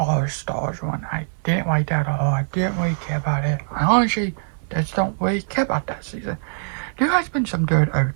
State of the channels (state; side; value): silent; left; digital silence